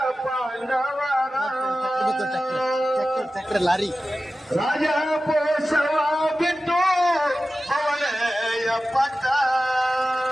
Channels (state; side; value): normal; both; correlation 0.94